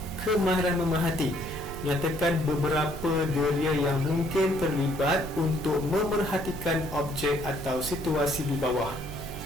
kemahiran memerhati. Nyatakan beberapa deria yang mungkin terlibat untuk memerhatikan objek atau situasi di bawah.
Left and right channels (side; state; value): right; noise; hum, 14 dB below the sound